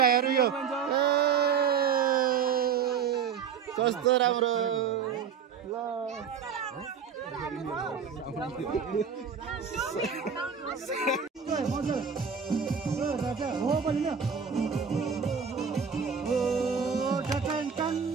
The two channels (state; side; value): quieter; left; 6.8 dB